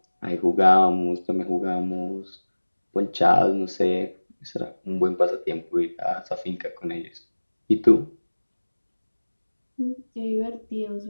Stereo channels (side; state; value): both; inverted; correlation -1.00